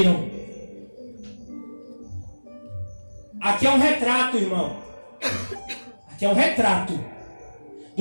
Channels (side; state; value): both; inverted; correlation -1.00